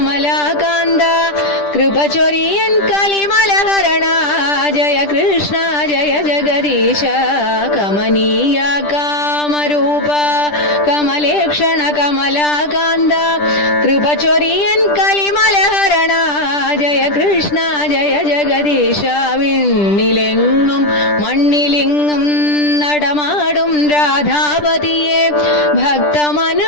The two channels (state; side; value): late; right; 10 ms